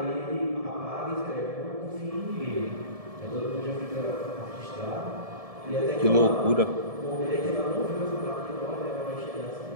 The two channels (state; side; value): late; left; 1.7 ms